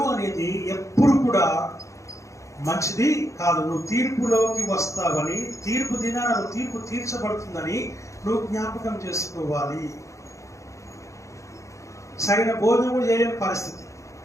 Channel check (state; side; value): late; right; 0.15 ms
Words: అనేది ఎప్పుడు కూడా మంచిది కాదు. నువ్వు తీర్పులోకి వస్తావని, తీర్పు దినాన నువ్వు తీర్పు తీర్చబడుతుందని నువ్వు జ్ఞాపకం చేసుకోవాలి. సరైన భోజనం కూడా చేయలేని పరిస్థితి,